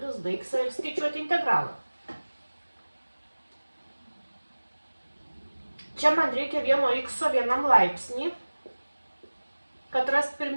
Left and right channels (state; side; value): inverted; both; correlation -1.00